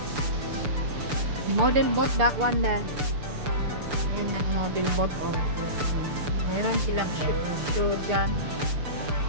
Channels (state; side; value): late; left; 6.8 ms